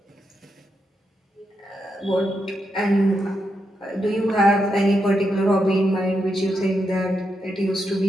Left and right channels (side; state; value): both; normal; correlation 0.83